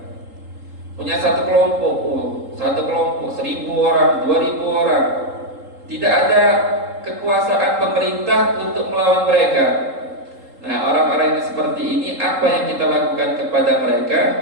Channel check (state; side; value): late; left; 3.8 ms